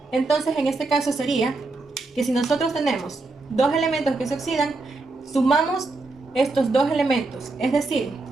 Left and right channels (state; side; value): quieter; left; 3.4 dB